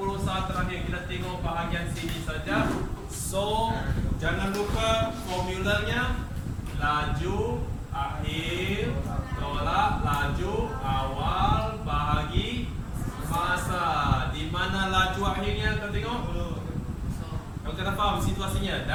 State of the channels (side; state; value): both; identical; correlation 1.00